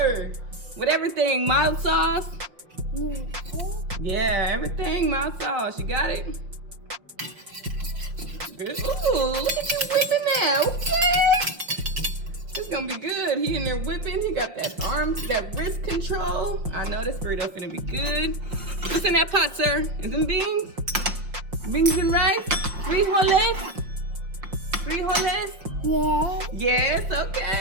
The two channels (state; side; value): late; left; 5.4 ms